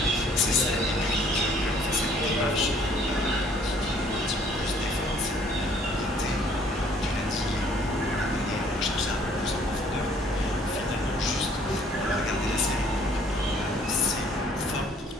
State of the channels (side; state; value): both; normal; correlation 0.59